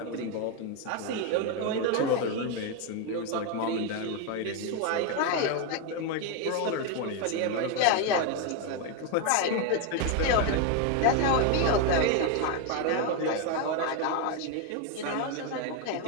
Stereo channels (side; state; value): both; different; correlation 0.01